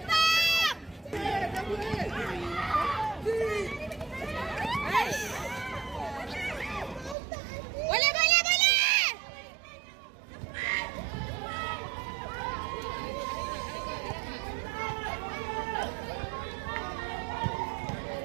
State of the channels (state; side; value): drops out; left; at 7.2 s